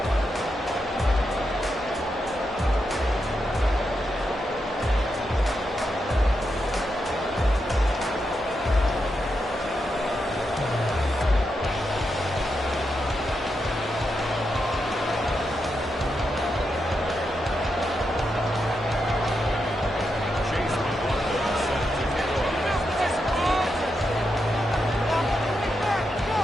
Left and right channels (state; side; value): normal; both; correlation 0.85